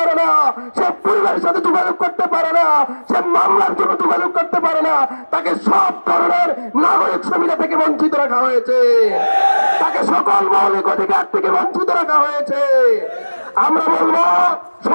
না, সে পরিবারের সাথে যোগাযোগ করতে পারে না, সে মামলার জন্য যোগাযোগ করতে পারে না, তাকে সব ধরনের নাগরিক সুবিধা থেকে বঞ্চিত রাখা হয়েছে, তাকে সকল মৌলিক অধিকার থেকে বঞ্চিত রাখা হয়েছে। আমরা বলবো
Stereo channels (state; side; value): inverted; both; correlation -1.00